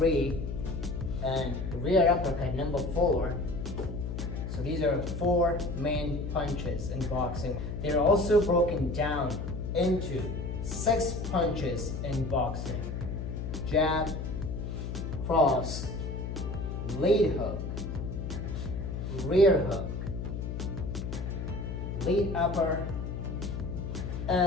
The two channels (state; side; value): noise; left; hum, 5 dB below the sound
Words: and rear uppercut number 4. So these are 4 main punches in boxing. They are also broken down into 6 punches in boxing: jab, cross, lead hook, rear hook, lead upper,